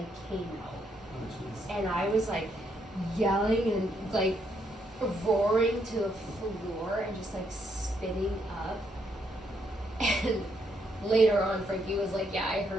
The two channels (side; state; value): both; normal; correlation 0.75